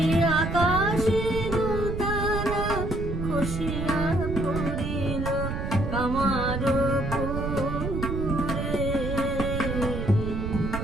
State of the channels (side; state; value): right; noise; rumble, 3 dB below the sound